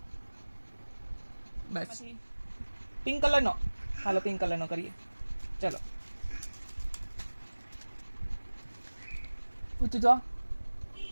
બસ પિંક કલર નો. હાલો પિંક કલર નો કરીએ. ચલો ઊંચું જો.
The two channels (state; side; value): inverted; both; correlation -1.00